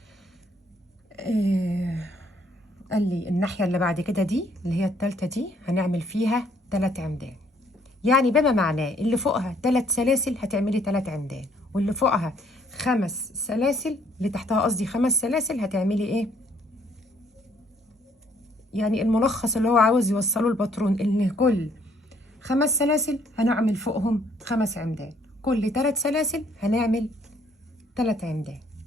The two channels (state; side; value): normal; both; correlation 0.65